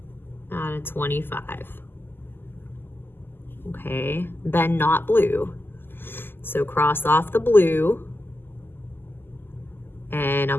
out of 25. Okay, then not blue. So cross off the blue, and I'm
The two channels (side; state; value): right; late; 0.099 ms